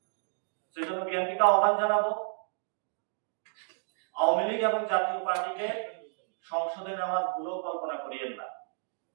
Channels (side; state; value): left; silent; digital silence